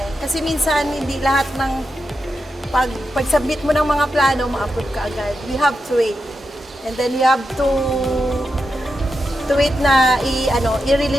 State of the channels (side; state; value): both; normal; correlation 0.88